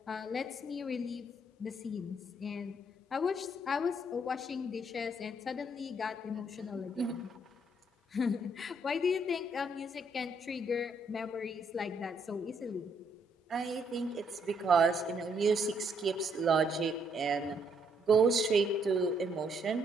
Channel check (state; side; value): normal; both; correlation 0.71